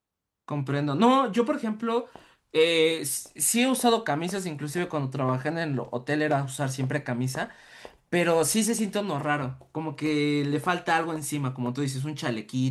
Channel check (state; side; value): identical; both; correlation 1.00